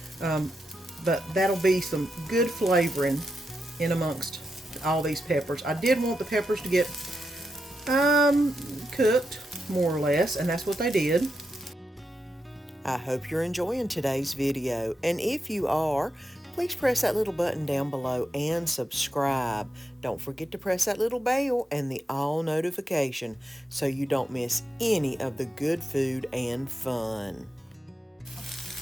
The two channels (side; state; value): both; normal; correlation 0.86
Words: But that'll be some good flavoring in amongst all these peppers. I did want the peppers to get cooked more or less, and that's what they did. I hope you're enjoying today's video, and if you are, please press that little button down below and subscribe. Don't forget to press that little bell and the all notification so you don't miss any of the good food and fun.